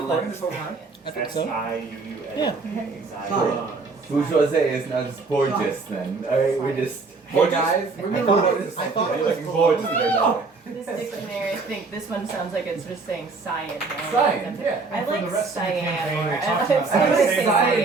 2011. this whole time? I think so. SIUUN. Yeah. Bourgeoisie is not just gorgeous then. Alright, we just. Hey guys, we're I gonna thought record it this. I thought Are it you was looking forward to cool. their dog? This dictionary, I think this one sounds like it's just saying cyan. Cyan, yeah. I And for like the rest of the cyan campaign, more. we I talked like about say Cyan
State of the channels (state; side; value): quieter; left; 4.0 dB